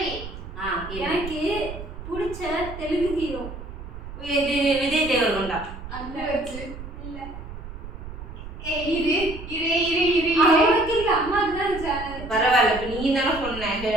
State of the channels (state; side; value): noise; right; rumble, 11 dB below the sound